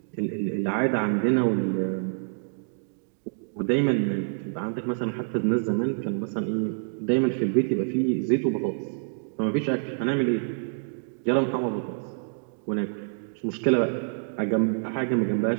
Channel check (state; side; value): silent; left; digital silence